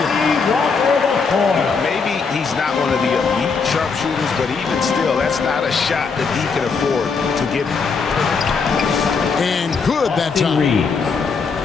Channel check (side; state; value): right; quieter; 5.1 dB